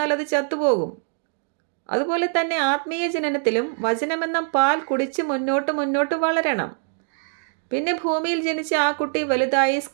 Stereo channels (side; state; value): left; silent; 63 dB below the other